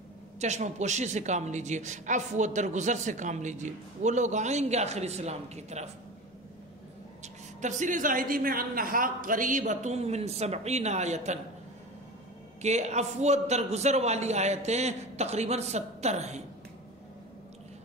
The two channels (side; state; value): both; normal; correlation 0.31